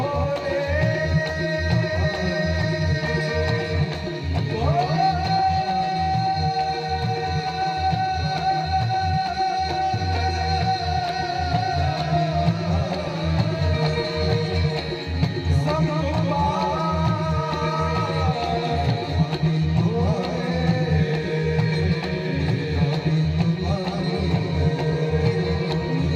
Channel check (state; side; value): identical; both; correlation 1.00